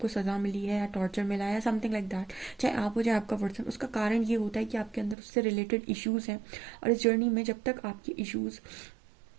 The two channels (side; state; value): left; drops out; at 5.2 s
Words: सज़ा मिली है या टॉर्चर मिला है या समथिंग लाइक दैट, चाहे आप हो चाहे आपका पर्सन। उसका कारण ये होता है कि आपके अंदर उससे रिलेटेड इश्यूज़ हैं, और इस जर्नी में जब तक आपके इश्यूज़